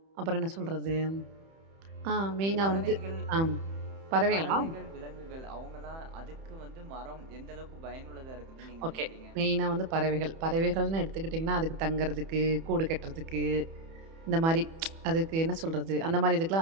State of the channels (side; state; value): left; late; 31 ms